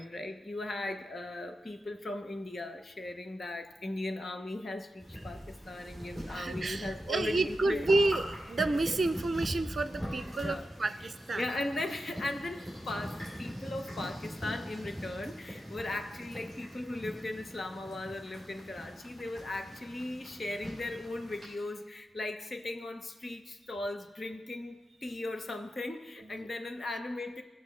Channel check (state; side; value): normal; both; correlation 0.89